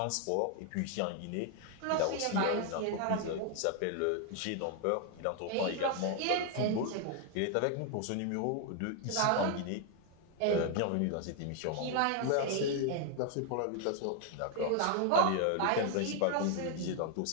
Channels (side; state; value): both; different; correlation 0.01